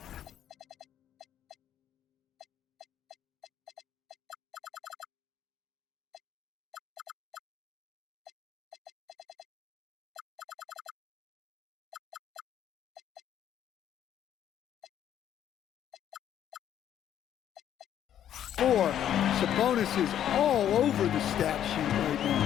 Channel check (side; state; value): right; quieter; 10.5 dB